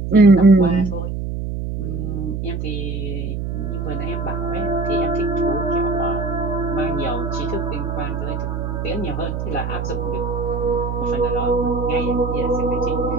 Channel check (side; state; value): right; noise; hum, 3 dB below the sound